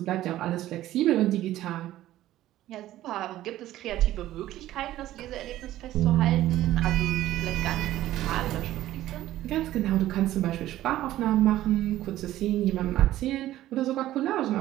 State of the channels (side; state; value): left; quieter; 14.3 dB